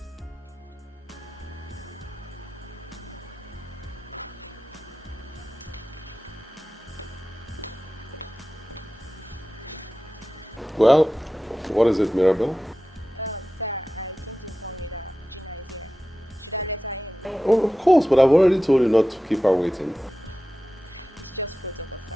Well, what is it, Mirabelle? Sir, I came to inform you that Gina is here. Should I let her in? Oh, of course, but I've already told you not to keep her waiting. It's just protocol,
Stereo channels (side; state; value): both; normal; correlation 0.93